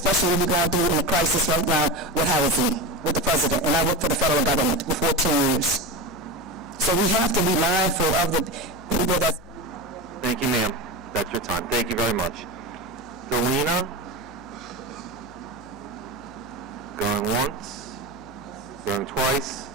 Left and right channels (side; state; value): left; noise; hum, 22 dB below the sound